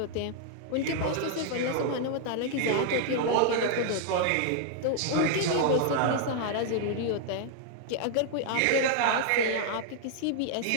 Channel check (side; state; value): both; different; correlation -0.01